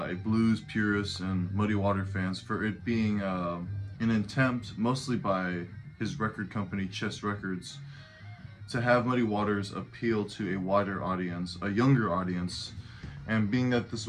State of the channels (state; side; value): identical; both; correlation 1.00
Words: blues purists and Muddy Water fans for it being an attempt, mostly by his record company Chess Records, to have Muddy Waters appeal to a wider audience, a younger audience. And being that this